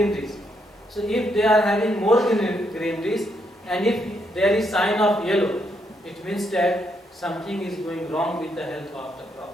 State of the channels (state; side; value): normal; both; correlation 0.76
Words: So if they are having more greeneries and if there is sign of yellow, it means that something is going wrong with the health of the